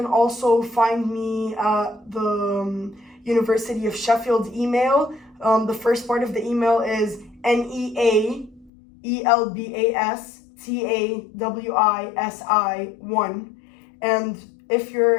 also find me at the University of Sheffield email. The first part of the email is NEAELBASTAWISI1, and if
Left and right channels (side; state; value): right; drops out; at 8.7 s